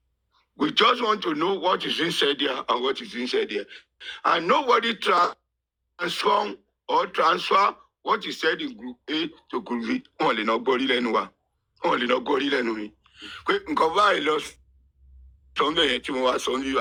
We just want to know what is inside there and what is inside there. And nobody transfer what is said in group A to group B. Only not body lenua. Only not body lenui. Nkoba lost something to was only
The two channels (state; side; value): identical; both; correlation 1.00